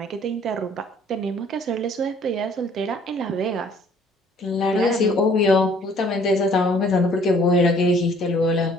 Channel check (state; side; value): normal; both; correlation 0.58